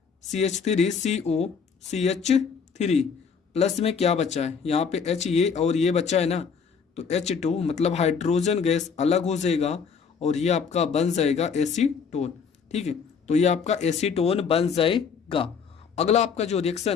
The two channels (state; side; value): quieter; right; 6.1 dB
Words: CH3 CO CH3 प्लस में क्या बचा है, यहाँ पे H ये और ये बचा है ना, तो H2 मतलब हाइड्रोजन गैस अलग हो जाएगा और ये आपका बन जाएगा एसीटोन। ठीक है, तो ये आपका एसीटोन बन जाएगा। अगला आपका जो